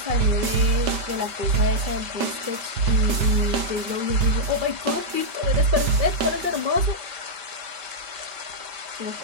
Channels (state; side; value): late; left; 5.1 ms